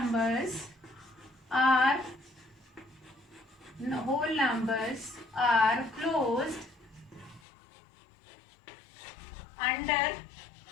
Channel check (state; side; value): drops out; right; at 7.4 s